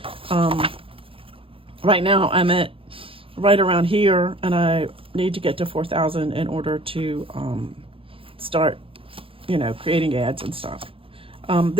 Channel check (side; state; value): left; late; 0.26 ms